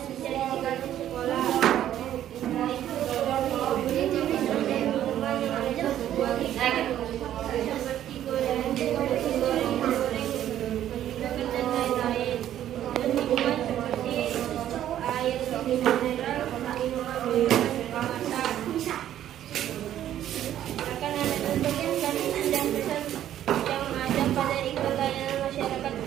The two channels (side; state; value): left; quieter; 11.6 dB